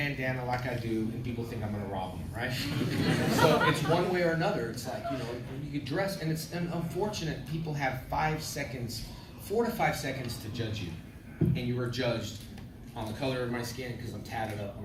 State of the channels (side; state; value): both; identical; correlation 1.00